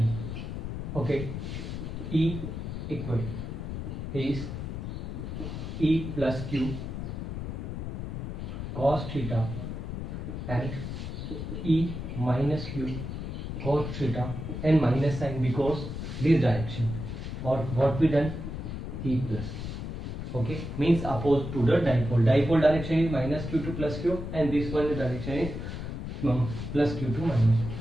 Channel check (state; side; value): noise; left; rumble, 5 dB below the sound